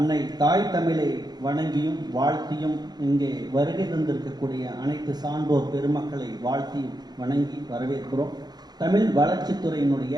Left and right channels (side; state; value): left; late; 0.20 ms